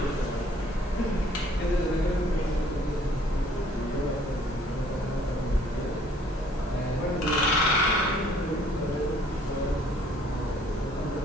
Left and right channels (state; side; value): normal; both; correlation 0.59